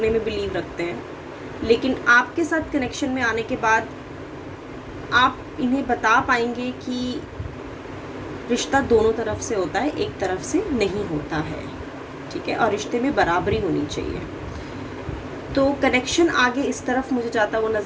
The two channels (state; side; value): identical; both; correlation 1.00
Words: में बिलीव रखते हैं, लेकिन आपके साथ कनेक्शन में आने के बाद आप इन्हें बता पाएंगे कि रिश्ता दोनों तरफ से होता है, एक तरफ से नहीं होता है, ठीक है, और रिश्ते में बराबरी होनी चाहिए। तो कनेक्शन आगे इस तरफ मुझे जाता हुआ